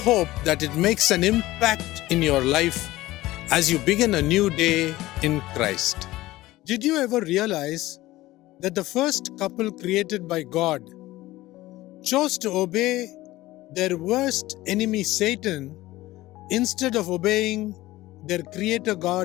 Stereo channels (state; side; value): quieter; right; 17.4 dB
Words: that it makes an impact in your life as you begin a new day in Christ. Did you ever realize that the first couple created by God chose to obey their worst enemy Satan instead of obeying their Creator